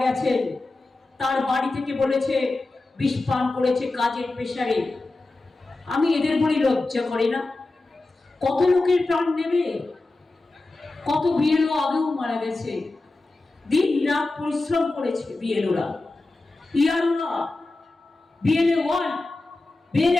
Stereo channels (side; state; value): right; quieter; 3.1 dB